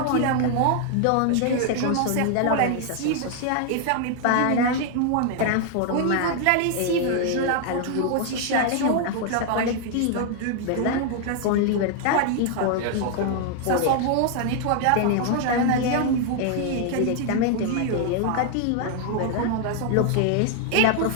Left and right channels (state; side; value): different; both; correlation 0.00